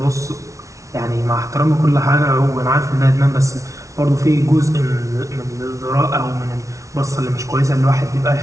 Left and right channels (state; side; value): late; left; 0.15 ms